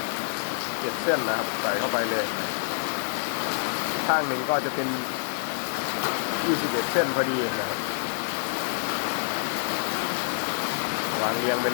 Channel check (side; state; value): right; silent; digital silence